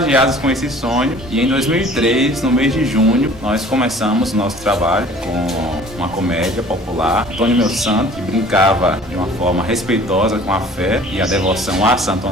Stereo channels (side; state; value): both; normal; correlation 0.49